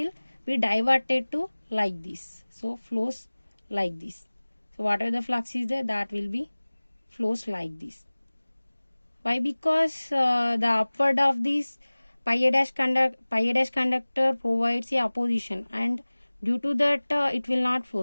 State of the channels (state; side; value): inverted; both; correlation -1.00